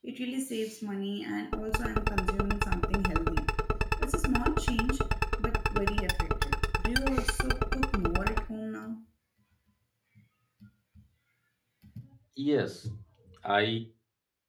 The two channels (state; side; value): identical; both; correlation 1.00